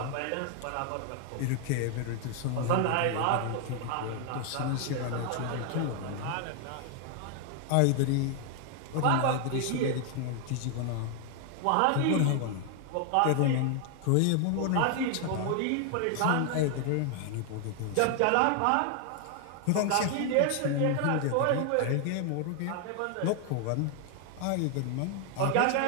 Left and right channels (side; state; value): both; different; correlation 0.00